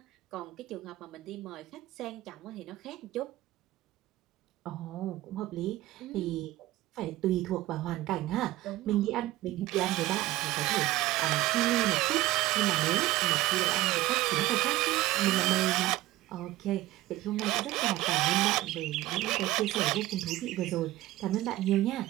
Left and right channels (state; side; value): quieter; left; 16.9 dB